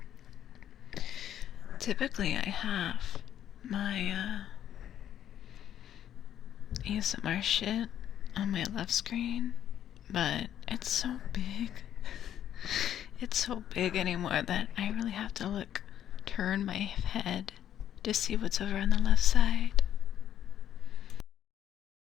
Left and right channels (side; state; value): right; quieter; 10.5 dB